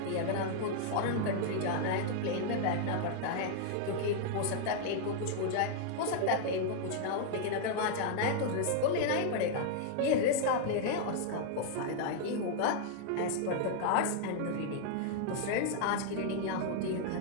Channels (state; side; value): different; both; correlation -0.01